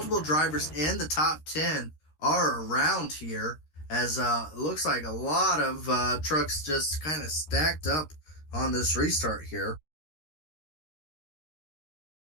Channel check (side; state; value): right; late; 13 ms